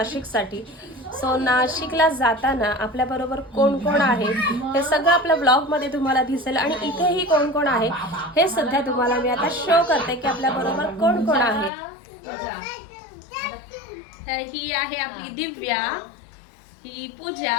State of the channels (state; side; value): drops out; right; at 11.7 s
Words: सो नाशिकला जाताना आपल्याबरोबर कोण कोण आहे हे सगळं आपल्या ब्लॉगमध्ये तुम्हाला दिसेल. आणि इथेही कोण कोण आहे हे सध्या तुम्हाला मी आता शो करते की आपल्याबरोबर कोण कोण आहे. तर ही आहे आपली दिव्या, ही पूजा,